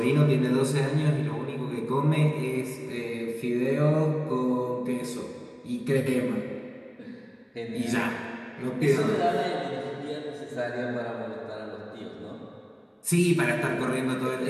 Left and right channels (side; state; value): both; identical; correlation 1.00